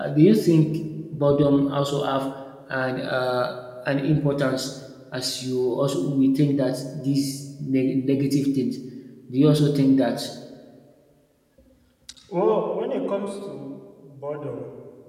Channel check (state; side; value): identical; both; correlation 1.00